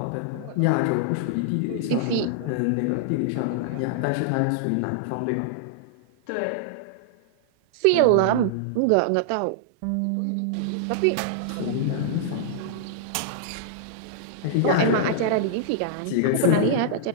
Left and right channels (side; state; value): both; different; correlation -0.01